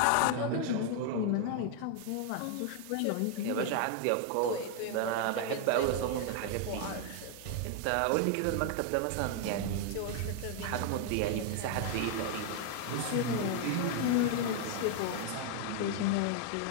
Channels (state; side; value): different; both; correlation 0.00